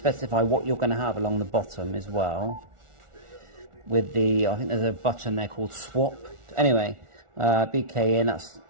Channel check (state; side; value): late; left; 1.4 ms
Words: what you're going to have along the bottom as well. With the, I think there's a button there called swap. Anyway, BK in, that's to